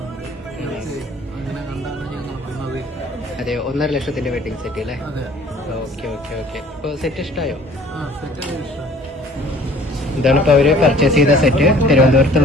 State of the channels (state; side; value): normal; both; correlation 0.52